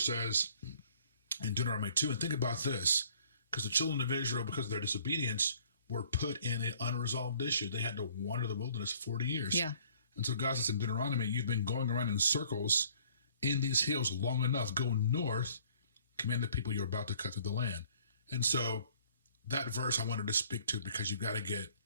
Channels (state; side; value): inverted; both; correlation -0.58